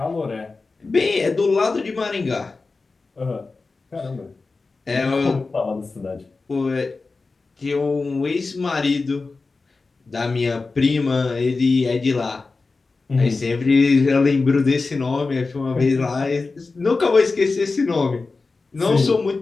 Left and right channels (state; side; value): quieter; right; 3.9 dB